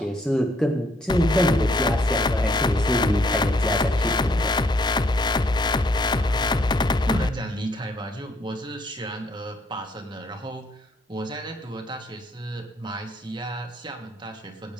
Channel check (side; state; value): both; normal; correlation 0.67